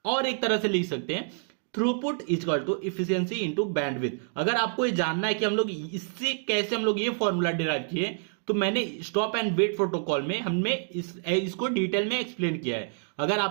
और एक तरह से लिख सकते हैं throughput equal to efficiency into bandwidth. अगर आपको ये जानना है कि हम लोग इससे कैसे हम लोग ये फॉर्मूला डिराइव किए, तो मैंने स्टॉप एंड वेट प्रोटोकॉल में हमने इसको डिटेल में एक्सप्लेन किया है। अगर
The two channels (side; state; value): left; silent; 60 dB below the other